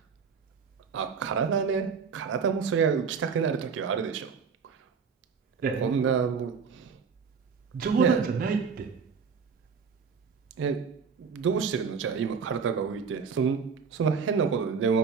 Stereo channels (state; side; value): quieter; left; 5.8 dB